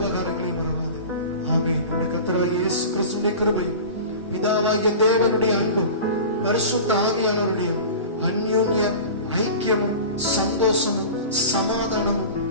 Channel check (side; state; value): both; inverted; correlation -0.35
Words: மறவாது. ஆமென். நம்முடைய கர்த்தராகிய இயேசு கிறிஸ்துவின் கிருபையும், பிதாவாகிய தேவனுடைய அன்பும், பரிசுத்த ஆவியானவருடைய அந்யோன்ய ஐக்கியமும், சந்தோஷமும், சமாதானமும்